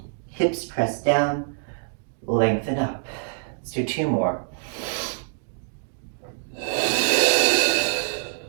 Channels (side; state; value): left; silent; digital silence